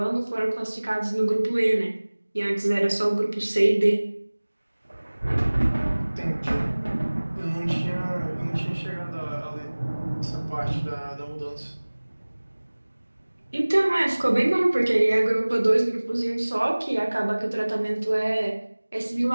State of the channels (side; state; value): both; inverted; correlation -1.00